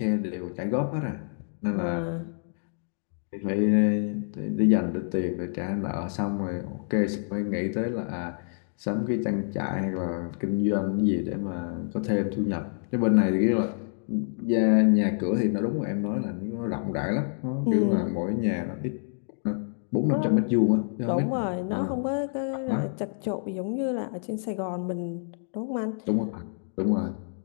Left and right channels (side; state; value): right; silent; digital silence